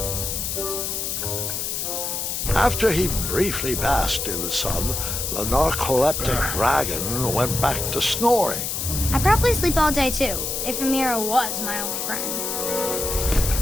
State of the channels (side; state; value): left; noise; hiss, 2 dB below the sound